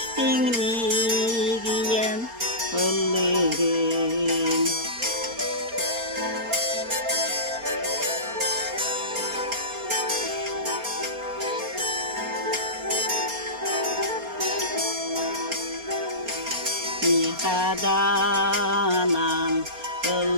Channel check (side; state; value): left; late; 4.3 ms